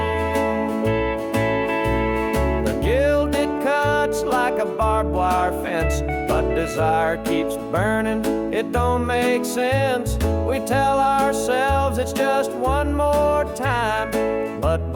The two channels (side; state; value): both; identical; correlation 1.00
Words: The gilded cuts like a barbed wire fence, but desire keeps burning, it don't make sense. We tell ourselves it's just one more time, but